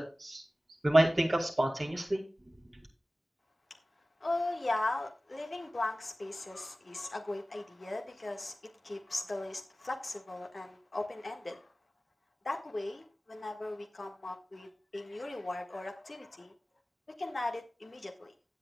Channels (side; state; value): both; normal; correlation 0.97